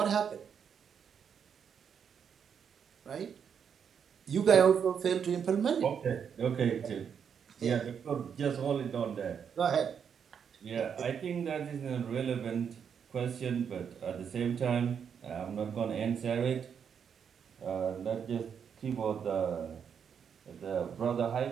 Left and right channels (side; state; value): left; quieter; 7.4 dB